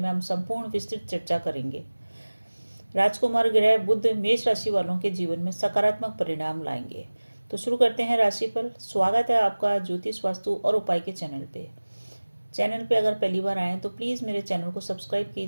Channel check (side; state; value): both; inverted; correlation -1.00